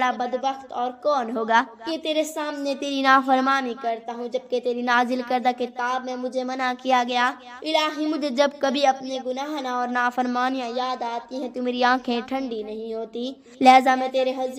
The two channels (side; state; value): both; identical; correlation 1.00